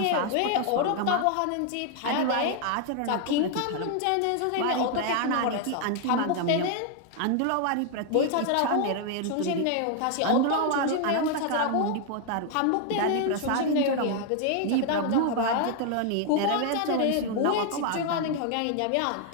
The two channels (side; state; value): both; different; correlation 0.00